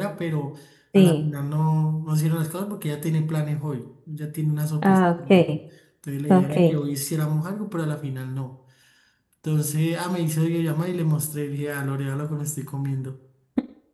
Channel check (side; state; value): both; identical; correlation 1.00